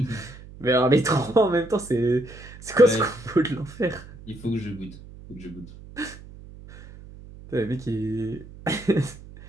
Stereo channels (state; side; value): noise; right; hum, 18 dB below the sound